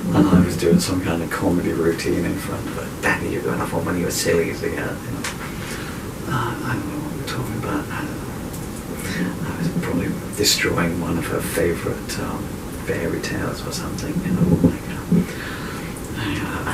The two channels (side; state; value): both; identical; correlation 1.00